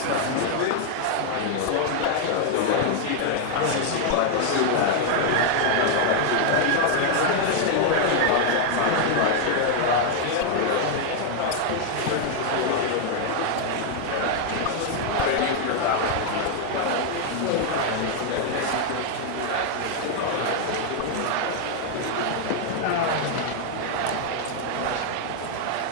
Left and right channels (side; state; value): both; different; correlation 0.00